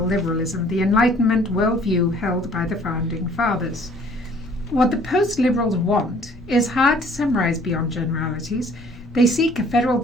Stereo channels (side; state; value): both; normal; correlation 0.56